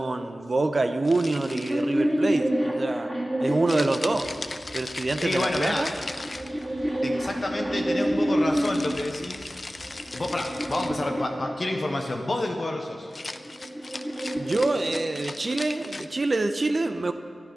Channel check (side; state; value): both; normal; correlation 0.96